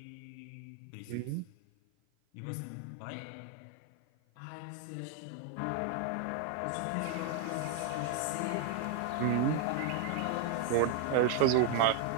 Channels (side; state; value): both; different; correlation 0.00